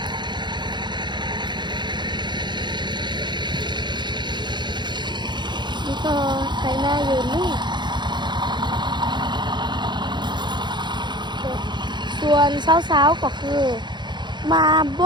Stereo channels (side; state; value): left; late; 0.22 ms